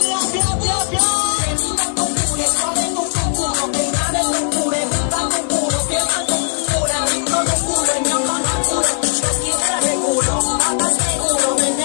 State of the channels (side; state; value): right; silent; digital silence